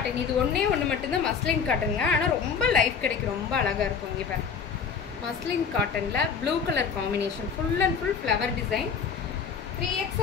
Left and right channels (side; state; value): right; quieter; 6.3 dB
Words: இது ஒன்று மட்டும்தான் மஸ்லின் காட்டனுங்க. ஆனால் ரொம்ப லைஃப் கிடைக்கும், ரொம்ப அழகாக இருக்கும். இங்கே பாருங்க, மஸ்லின் காட்டனில் blue colour combination, full and full flower design.